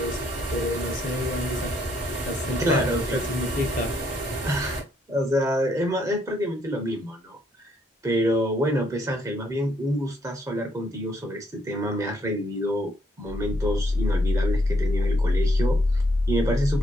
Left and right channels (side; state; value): both; normal; correlation 0.72